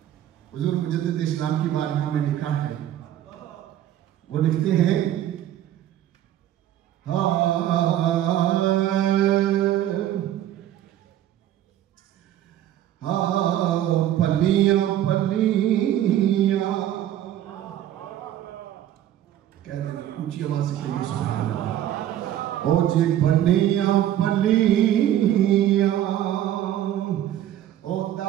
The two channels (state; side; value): quieter; left; 11.9 dB